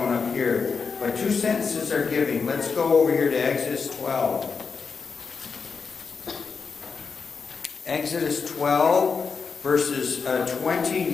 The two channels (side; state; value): right; quieter; 5.3 dB